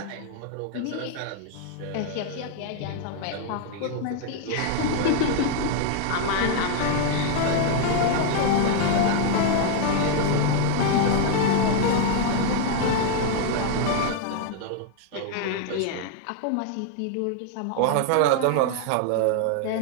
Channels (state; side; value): different; both; correlation 0.00